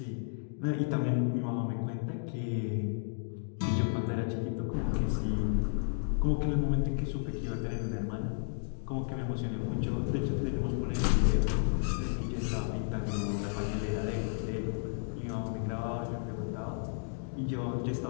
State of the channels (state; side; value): silent; right; digital silence